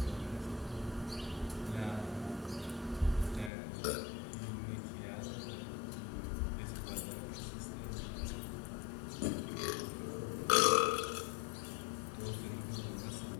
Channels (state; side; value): drops out; right; at 3.5 s